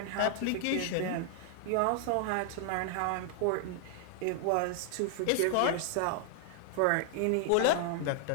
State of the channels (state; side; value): different; both; correlation 0.00